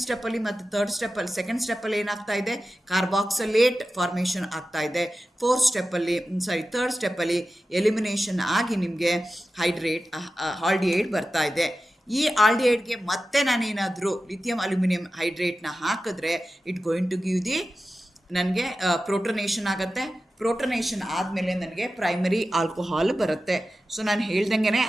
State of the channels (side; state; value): both; normal; correlation 0.93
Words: ಸ್ಟೆಪ್ಪಲ್ಲಿ ಮತ್ತು ಥರ್ಡ್ ಸ್ಟೆಪ್ಪಲ್ಲಿ, ಸೆಕೆಂಡ್ ಸ್ಟೆಪ್ಪಲ್ಲಿ ಏನಾಗ್ತಾ ಇದೆ, ಕಾರ್ಬಾಕ್ಸಿಲೇಟ್ ಫಾರ್ಮೇಷನ್ ಆಗ್ತಾ ಇದೆ. ಥರ್ಡ್ ಸ್ಟೆಪ್ಪಲ್ಲಿ ಎಲಿಮಿನೇಷನ್ ಆಗಿ ನಿಮಗೆ ಆಲ್ಡಿಹೈಡ್ ಬರ್ತಾ ಇದೆ. ಈ ಆಲ್ಡಿಹೈಡ್ಗೆ ಮತ್ತೆ ನಾನೇನಾದರೂ ಲಿಥಿಯಂ ಅಲ್ಯೂಮಿನಿಯಂ ಹೈಡ್ರೇಟ್ನ ಹಾಕಿದ್ರೆ it going to give the ನನಗೆ ಪ್ರೋಟೋನೇಷನ್ ಆಗುತ್ತೆ. ಪ್ರೋಟೋನೇಷನ್ ಆದಮೇಲೆ ನನಗೆ ಪ್ರೈಮರಿ ಆಲ್ಕೋಹಾಲ್ ಬರುತ್ತೆ. ಸೊ ನಾನು ಹೇಳ್ದಂಗೆ